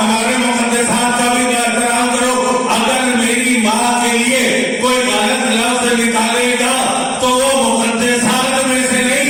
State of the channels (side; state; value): both; identical; correlation 1.00